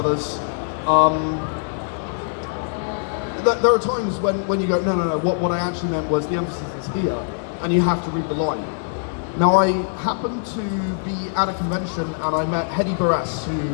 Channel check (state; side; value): silent; right; 63 dB below the other